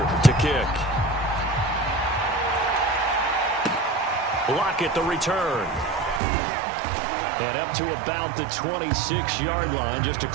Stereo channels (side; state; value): left; drops out; at 6.2 s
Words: to kick. Lockett the return. And up to about the 26-yard line, just